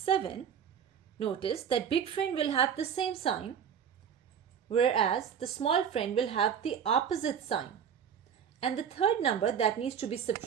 notice that big friend will have the same sign, whereas the small friend will have the opposite sign. And the third number that needs to be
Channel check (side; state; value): left; quieter; 7.9 dB